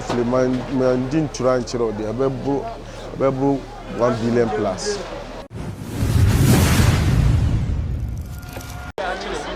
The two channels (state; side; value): identical; both; correlation 1.00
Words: man din tura nchiro de abebo 1 billion plus.